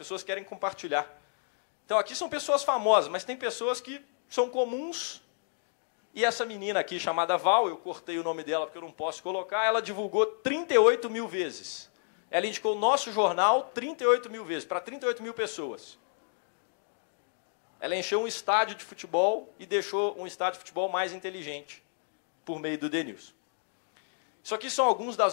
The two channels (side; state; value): right; silent; 57 dB below the other